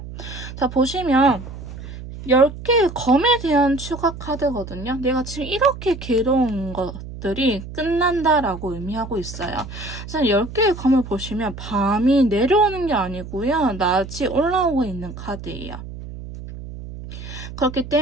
자, 보시면 10개의 검에 대한 추가 카드거든요. 내가 지금 이렇게 괴로운 것들이 끝난다라고 의미하고 있어요. 그래서 10개의 검을 보시면 밤이 내려오는 게 아니고요, 낮이 올라오고 있는 카드예요. 그렇기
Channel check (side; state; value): right; noise; hum, 11 dB below the sound